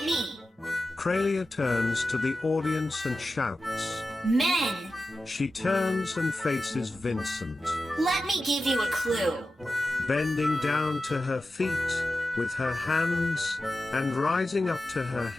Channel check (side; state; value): both; normal; correlation 0.93